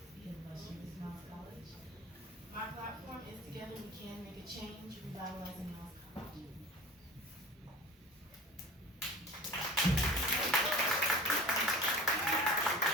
the illustrious Miles College. My platform is Together We Can Make a Change, Revitalizing Miles College.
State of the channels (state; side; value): normal; both; correlation 0.37